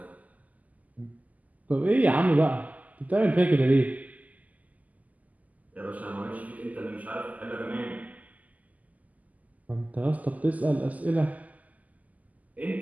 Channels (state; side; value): late; left; 0.077 ms